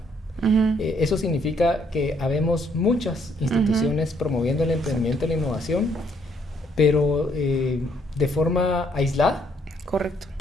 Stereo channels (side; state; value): both; normal; correlation 0.68